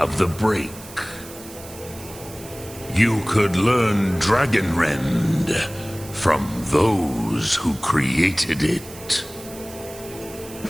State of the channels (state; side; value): noise; right; hiss, 17 dB below the sound